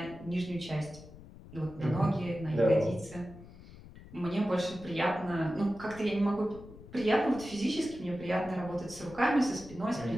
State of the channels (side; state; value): left; noise; rumble, 18 dB below the sound